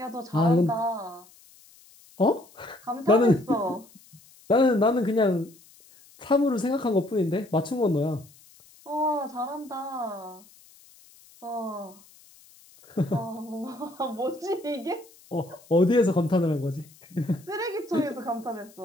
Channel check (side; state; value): left; noise; hiss, 26 dB below the sound